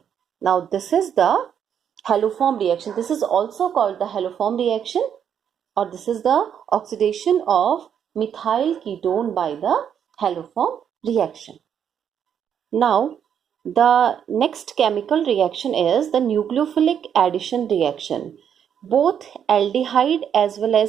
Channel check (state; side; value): quieter; left; 8.5 dB